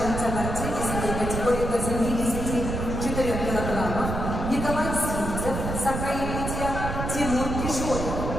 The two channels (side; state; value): right; noise; rumble, 3 dB below the sound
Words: борцы весовой категории до 74 килограммов Николай Сивцев, Саха-Якутия, Тимур Кишоев,